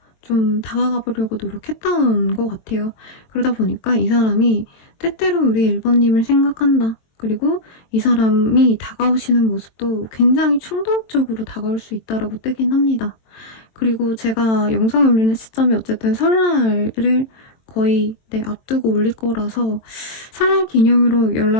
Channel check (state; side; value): late; right; 22 ms